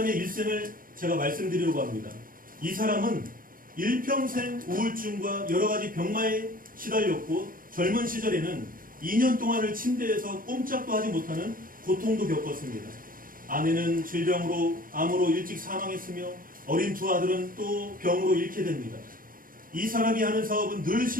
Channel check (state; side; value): late; left; 0.41 ms